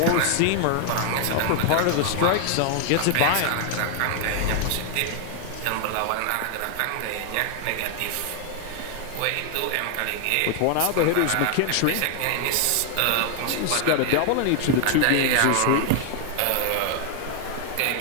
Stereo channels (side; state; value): both; different; correlation 0.00